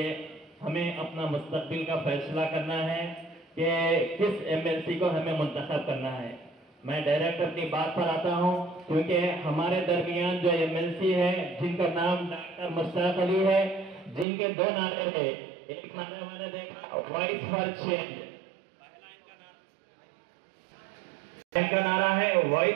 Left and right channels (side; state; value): left; drops out; at 14.2 s